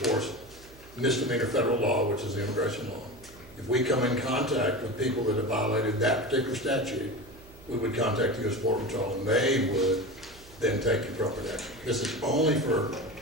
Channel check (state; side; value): noise; right; hum, 22 dB below the sound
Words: misdemeanor federal law, which is the immigration law. If we come in contact with people that have violated that particular statute, we would contact the U.S. Border Patrol, and they would then take appropriate action. This is only for